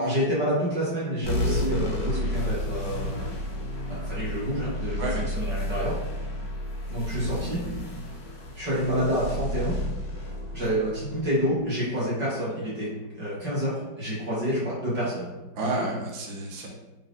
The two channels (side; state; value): left; late; 5.2 ms